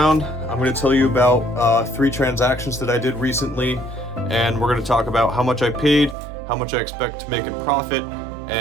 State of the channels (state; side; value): drops out; left; at 6.2 s